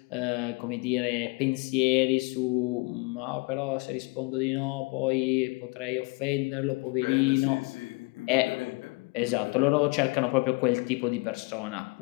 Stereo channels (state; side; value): quieter; right; 28.8 dB